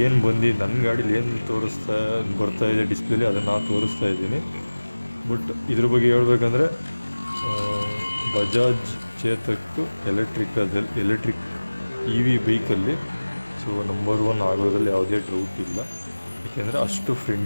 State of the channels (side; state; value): both; inverted; correlation -1.00